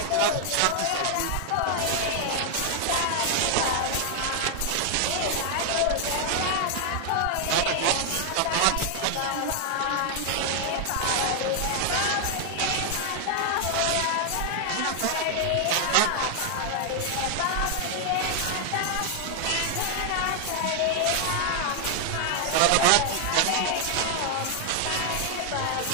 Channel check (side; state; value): both; different; correlation 0.00